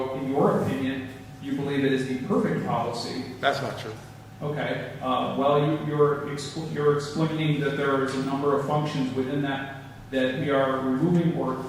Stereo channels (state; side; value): identical; both; correlation 1.00